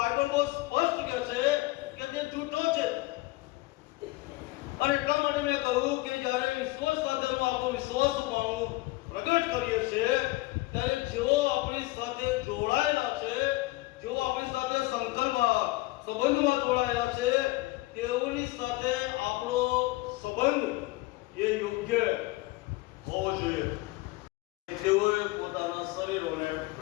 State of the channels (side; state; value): right; quieter; 20.7 dB